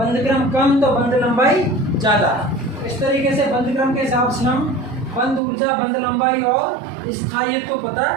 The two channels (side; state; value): left; drops out; at 5.4 s